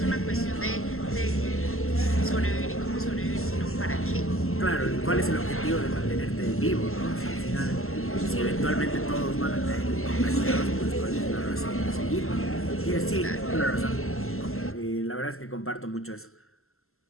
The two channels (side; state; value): right; late; 0.62 ms